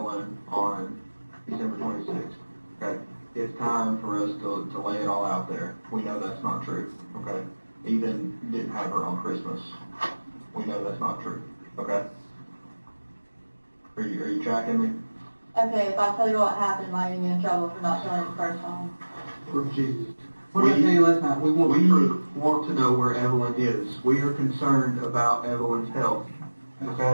on December 26th. Okay. It's time for us to lay it all out there. We know that's not true. Okay. Ethan didn't have her on Christmas. We know that's not true. Okay. Are you tracking me? Okay, if I tell you what happened, am I going to get in trouble for not telling you the first time? For Jesus. What did I tell you last night? We want to know where Evelyn is. We are concerned about Evelyn's health.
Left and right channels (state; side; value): inverted; both; correlation -1.00